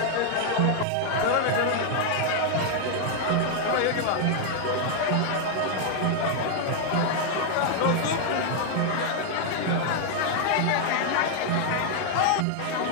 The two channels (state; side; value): different; both; correlation 0.00